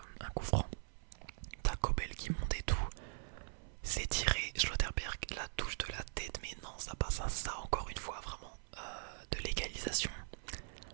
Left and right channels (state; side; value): silent; left; 50 dB below the other